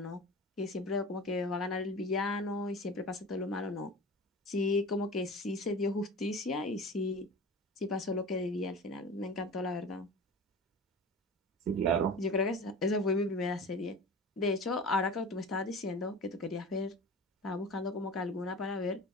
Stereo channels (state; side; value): normal; both; correlation 0.35